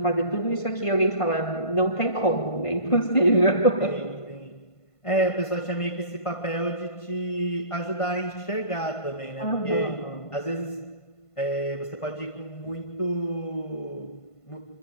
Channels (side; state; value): right; late; 1.5 ms